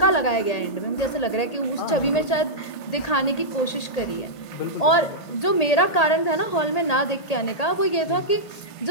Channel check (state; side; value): late; right; 1.8 ms